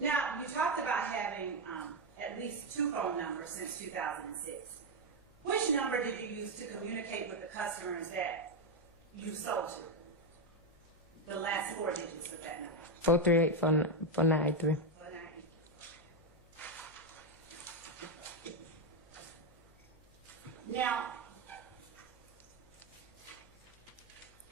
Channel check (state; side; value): noise; left; hum, 26 dB below the sound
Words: you talked about having at least 2 phone numbers since 2006. Which number did you use to communicate with the customers that you sold to? The last 4 digits of that number. 438 4983. Now,